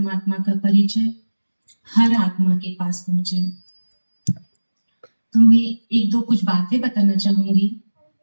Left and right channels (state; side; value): inverted; both; correlation -1.00